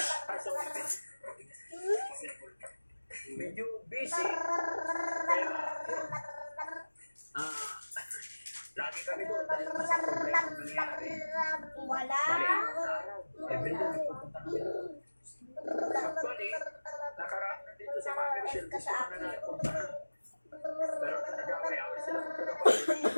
Medyo busy. Lagi kami doon dahil sa problema nangyari. Wala. Bali ang araw. Everyday nagpupunta kami doon. Actually, nakaraan na dito sa mga Michelle. Gusto ko na napuntahan. Pero nag-away-away sila sa trabaho.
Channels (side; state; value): both; inverted; correlation -1.00